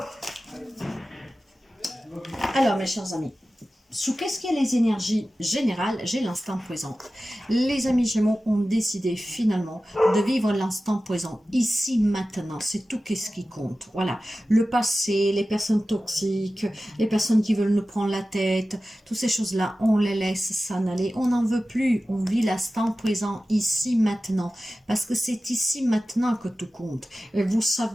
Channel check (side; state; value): both; normal; correlation 0.95